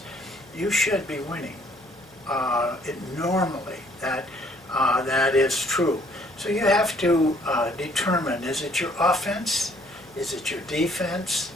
you should be winning. Normally, that is true. So you have to determine, is it your offense? Is it your defense?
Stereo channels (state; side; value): noise; left; hum, 29 dB below the sound